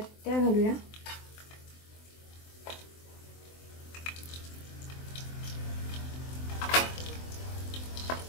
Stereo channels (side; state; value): right; late; 24 ms